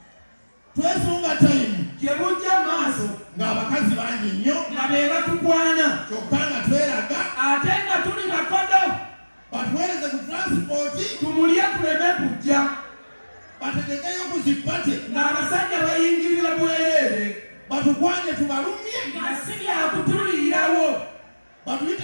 twesunga tayimu gye bujja maaso ng'abakazi bangi nnyo nga be batukwana kyokka nga tweraga ate nga tuli bakodo batuweereze ku transipooti tumulye tuleme kujja bategekeyo ku zipate ng'abasajja bayingirira bwereere batukwanye tubalumye nga si byakutuliirawo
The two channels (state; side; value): inverted; both; correlation -1.00